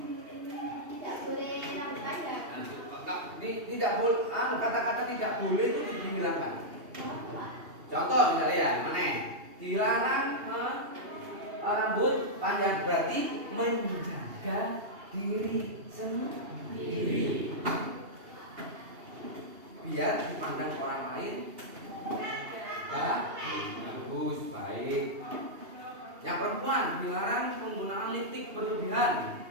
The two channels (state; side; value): late; left; 2.8 ms